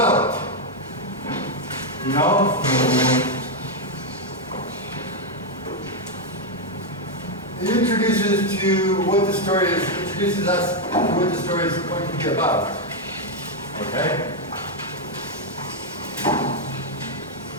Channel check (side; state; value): both; normal; correlation 0.01